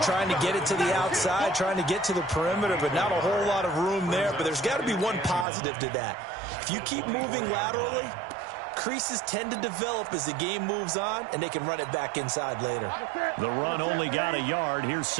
to get it to the outside, trying to get to the perimeter, but not a whole lot of room there. But there's got to be one positive to that. If you keep moving laterally, creases tend to develop as the game moves on, and they can run it back inside later. The run only got a yard. Here's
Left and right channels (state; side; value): drops out; left; at 5.5 s